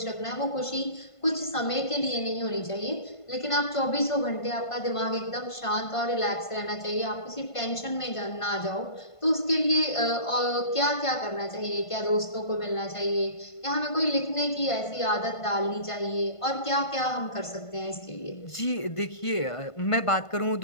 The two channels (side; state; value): right; late; 1.5 ms